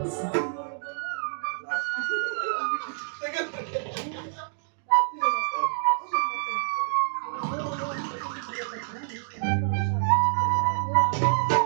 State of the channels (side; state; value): left; silent; digital silence